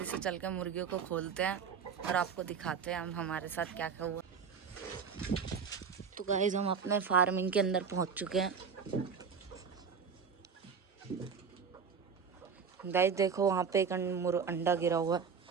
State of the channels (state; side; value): quieter; left; 6.2 dB